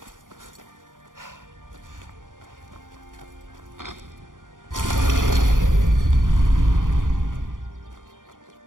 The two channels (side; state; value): left; late; 0.89 ms